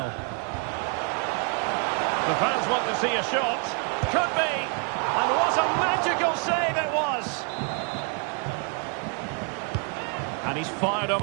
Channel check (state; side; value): quieter; left; 38.5 dB